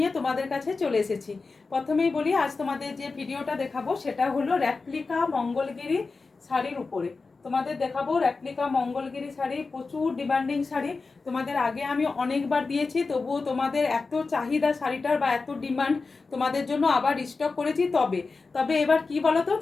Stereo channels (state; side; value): quieter; right; 4.1 dB